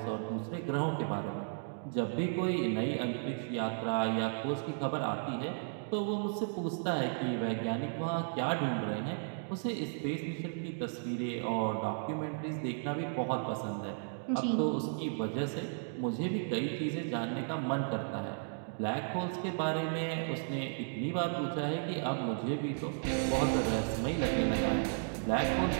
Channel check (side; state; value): left; silent; digital silence